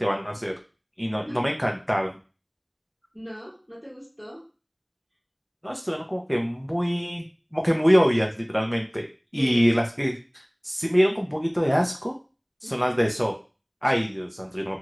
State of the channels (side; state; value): both; identical; correlation 1.00